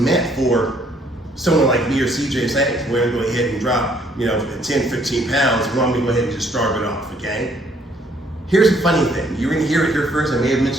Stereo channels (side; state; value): both; normal; correlation 0.65